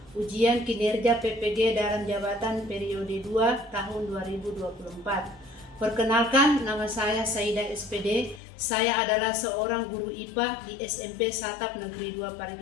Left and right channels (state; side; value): drops out; right; at 8.4 s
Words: ujian kinerja PPG dalam jabatan periode 2 tahun 2024. Perkenalkan, nama saya Saida SPD. Saya adalah seorang guru IPA di SMP Satap Negeri 2